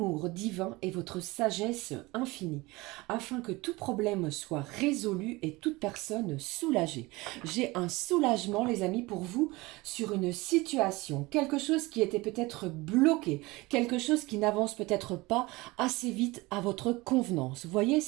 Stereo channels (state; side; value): quieter; left; 22.2 dB